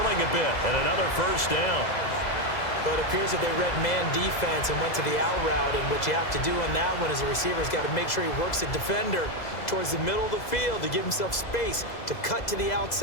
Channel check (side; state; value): right; late; 2.0 ms